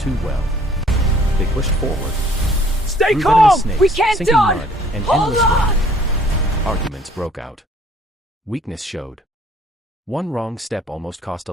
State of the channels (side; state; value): both; normal; correlation 0.58